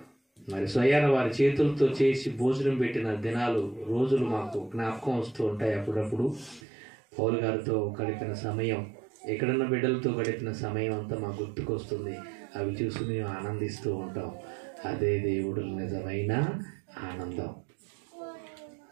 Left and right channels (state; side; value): drops out; left; at 6.6 s